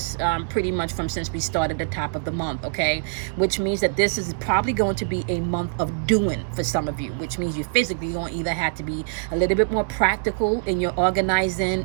pretty much since we started the top of the month, okay? Which means that this is probably going to be a month of doing for some of you, which means you physically going to either have to be a little bit more practical in your organizing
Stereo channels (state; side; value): silent; left; 61 dB below the other